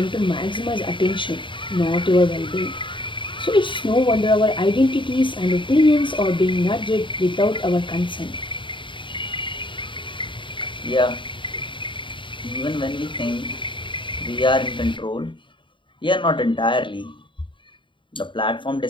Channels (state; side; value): late; right; 0.24 ms